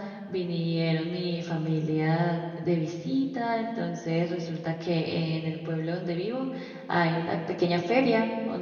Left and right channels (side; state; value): both; identical; correlation 1.00